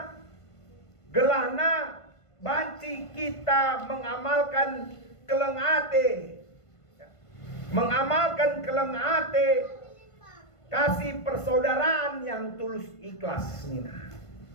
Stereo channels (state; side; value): late; right; 1.5 ms